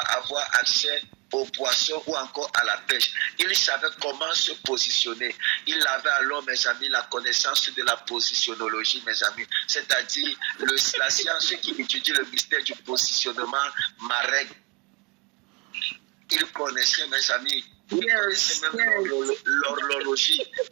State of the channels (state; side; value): quieter; left; 29.4 dB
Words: avoir accès aux poissons ou encore à la pêche. Il savait comment se positionner. Il avait alors, mes amis, la connaissance de la positionnologie, mes amis. C'est-à-dire la science qui étudie le mystère du positionnement marin. Il connaissait, mes amis, Il connaissait même l'horlogerie,